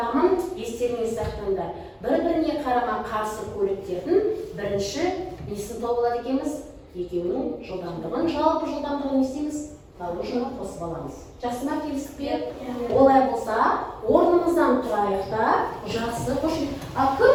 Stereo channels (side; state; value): both; identical; correlation 1.00